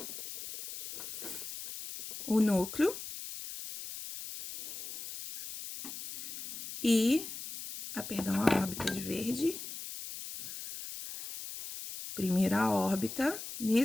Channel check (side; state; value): left; noise; hiss, 9 dB below the sound